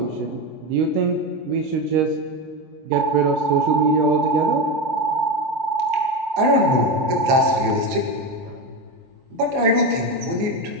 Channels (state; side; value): late; left; 24 ms